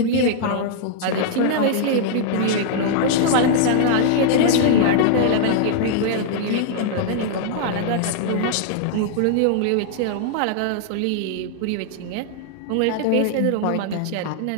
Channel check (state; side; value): different; both; correlation -0.01